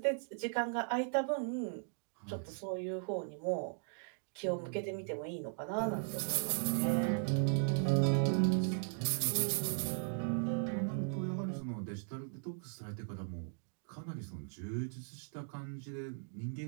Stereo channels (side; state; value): left; silent; digital silence